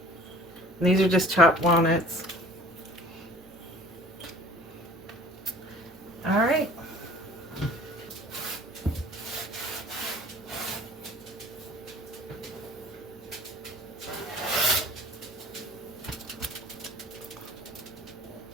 these are just chopped walnuts. All right.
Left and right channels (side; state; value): right; noise; hum, 27 dB below the sound